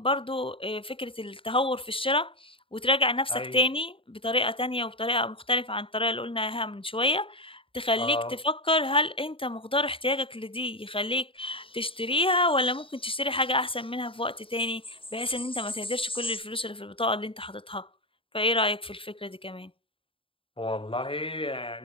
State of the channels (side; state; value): right; late; 0.26 ms